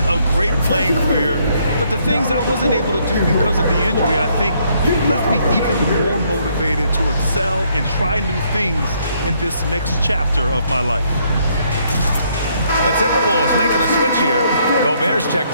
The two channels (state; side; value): inverted; both; correlation -0.70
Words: a great playing career. But the things I wasn't able to do because of the injury, I think, left me even more motivated to excel and try new things in this next chapter of my life. The Timberwolves making a switch here. Gobert's